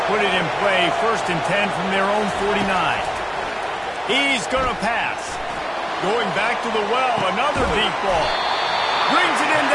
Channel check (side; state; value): both; identical; correlation 1.00